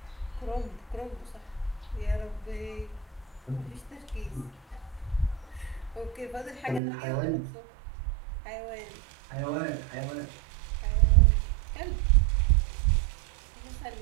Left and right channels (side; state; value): left; drops out; at 6.8 s